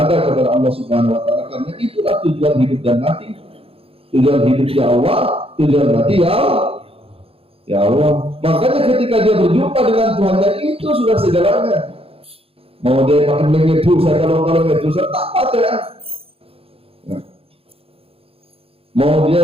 kepada Allah Subhanahu wa taala, karena itulah tujuan hidup dan mati. Tujuan hidup ya Allah, tujuan mati ya Allah. Makanya ketika dia berjumpa dengan Tuhannya, itu sudah segalanya. Mau dia makan mengedu, saya kalau mengedu saya tak ada ya. Nah. Mau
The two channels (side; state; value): left; late; 0.28 ms